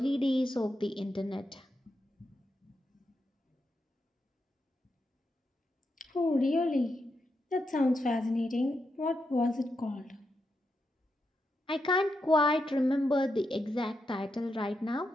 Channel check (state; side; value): normal; both; correlation 0.84